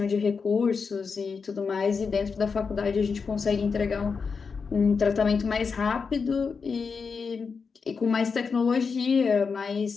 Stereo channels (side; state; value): right; quieter; 5.3 dB